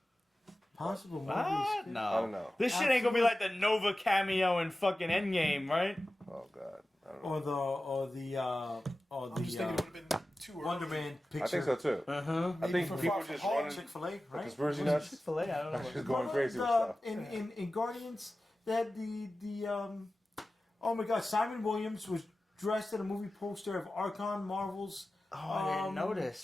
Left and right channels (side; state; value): both; normal; correlation 0.95